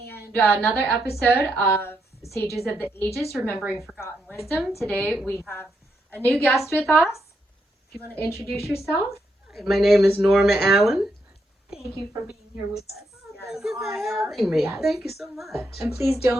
another episode of Sages of the Ages, Remembering Forgotten Wisdom. Today we have a new guest with us. If you want to introduce yourself. My name is Norma Allen. Thank you for being here with us. Thank you for having me. Yes. Thank you so much. And please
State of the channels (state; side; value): normal; both; correlation 0.80